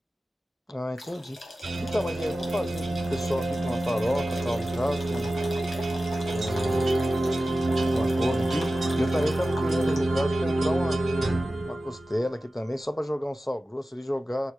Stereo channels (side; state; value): both; normal; correlation 0.95